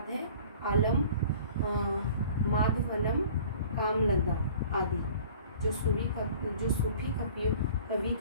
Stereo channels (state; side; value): inverted; both; correlation -0.47